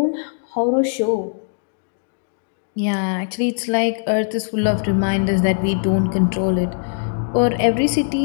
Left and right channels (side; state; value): right; silent; digital silence